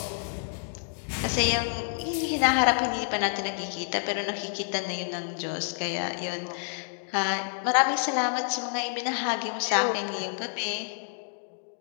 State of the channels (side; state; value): right; silent; digital silence